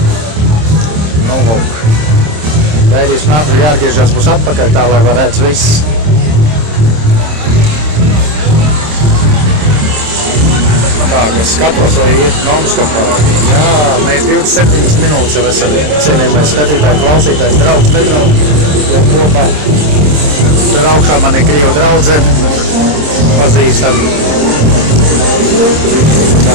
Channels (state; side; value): late; left; 26 ms